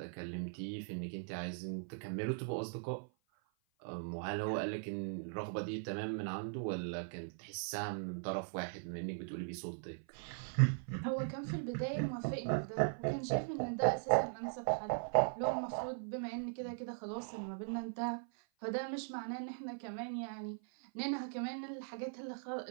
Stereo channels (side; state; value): left; silent; 51 dB below the other